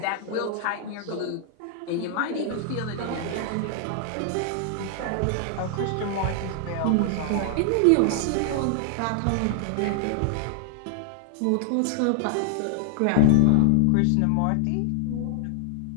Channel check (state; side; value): different; both; correlation -0.01